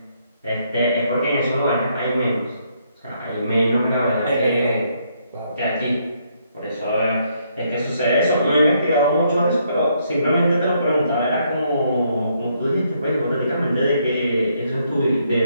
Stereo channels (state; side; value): inverted; both; correlation -0.73